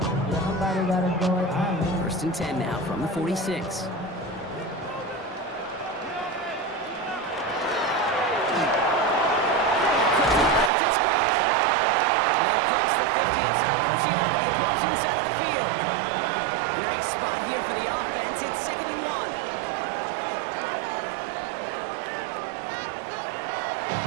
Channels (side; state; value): left; drops out; at 10.7 s